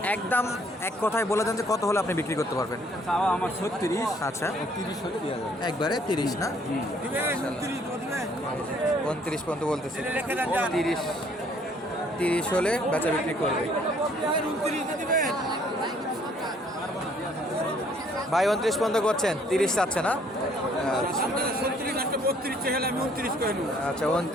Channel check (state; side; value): normal; both; correlation 0.62